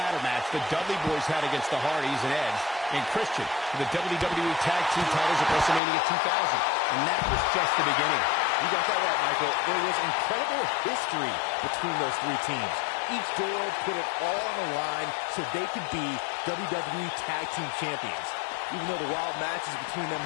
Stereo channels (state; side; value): drops out; right; at 5.8 s